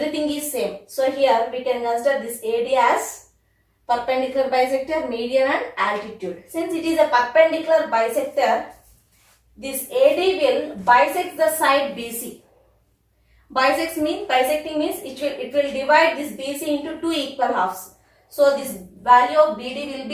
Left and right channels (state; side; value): identical; both; correlation 1.00